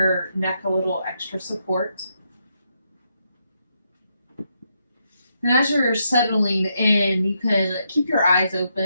neck a little extra support. And as you're settling in, you can keep your eyes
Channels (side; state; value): both; inverted; correlation -0.80